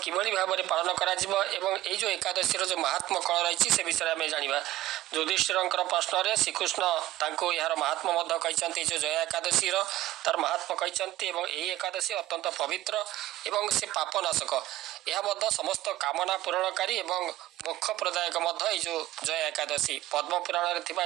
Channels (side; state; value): left; quieter; 15.4 dB